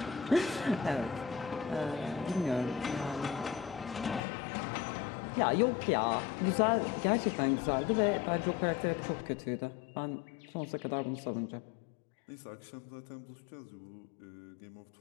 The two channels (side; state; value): right; drops out; at 4.2 s